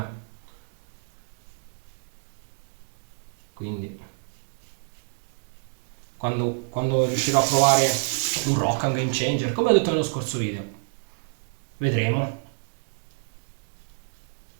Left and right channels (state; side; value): silent; left; 59 dB below the other